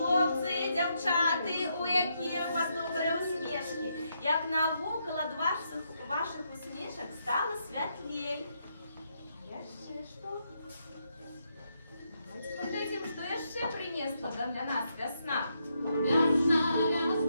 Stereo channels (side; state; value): both; inverted; correlation -0.79